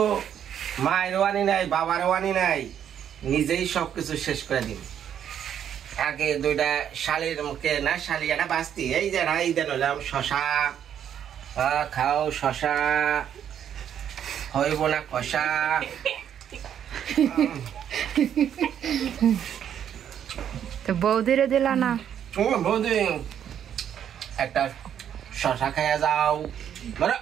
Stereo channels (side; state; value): left; quieter; 9.3 dB